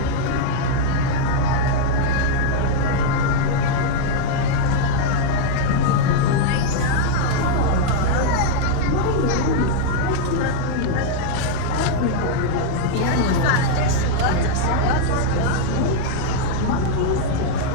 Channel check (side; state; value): both; different; correlation 0.00